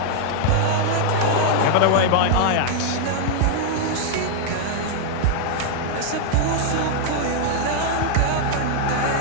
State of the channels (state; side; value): different; both; correlation 0.00